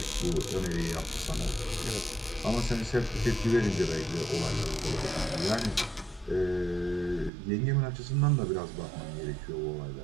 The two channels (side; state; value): left; drops out; at 7.3 s